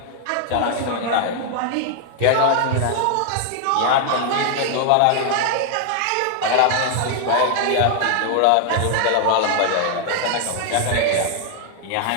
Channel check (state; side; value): different; both; correlation 0.00